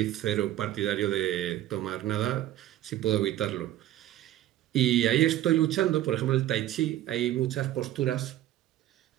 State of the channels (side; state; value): left; quieter; 13.6 dB